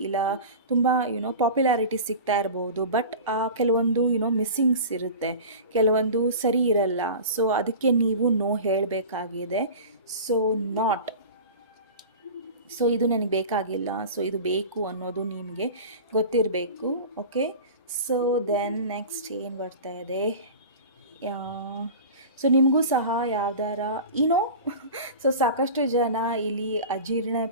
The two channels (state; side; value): inverted; both; correlation -0.34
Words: ಇಲ್ಲ ತುಂಬ ಪಾಪ್ಯುಲಾರಿಟಿ ಸಿಗ್ತಾ ಇರ್ಬೋದು. ಬಟ್ ಕೆಲವೊಂದು ಮಿಸ್ಸಿಂಗ್ಸ್ ಇರುತ್ತೆ, ಕೆಲವೊಂದು ಸರಿ ಇರಲ್ಲ. ಸೊ ಅದಕ್ಕೆ ನೀವು ನೋ ಹೇಳಬೇಕಾಗಿದೆ. ಸೊ ಸೊ ಇದು ನನಗೆ ಬೇಕಾಗಿಲ್ಲ, ಸೊ ಇದು ಬೇಕು ಅನ್ನೋದು ನಿಮಗೆ ಗೊತ್ತಿರಬೇಕು. ಓಕೆ, ಸೊ ದೆನ್ ನೆಕ್ಸ್ಟ್ ಏನು ಬರ್ತಾ ಇದೆ, ಸೊ ನಿಮಗೂ ಸಹ ಯಾವ್ದಾರ ಸೊ ಸಾಕಷ್ಟು ಜನ ಇಲ್ಲಿ ಅಜೀರ್ಣ